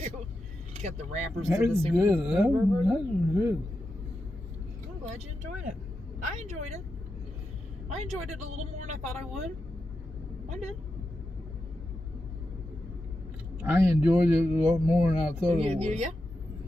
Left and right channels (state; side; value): normal; both; correlation 0.88